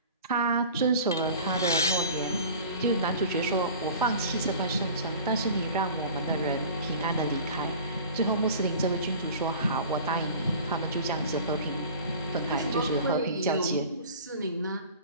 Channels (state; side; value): inverted; both; correlation -0.41